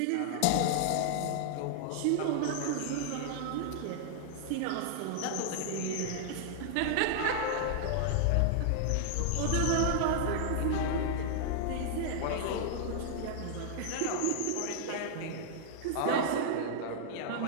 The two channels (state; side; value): different; both; correlation -0.01